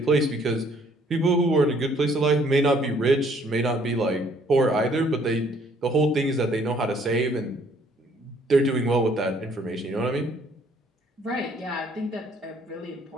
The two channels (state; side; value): normal; both; correlation 0.62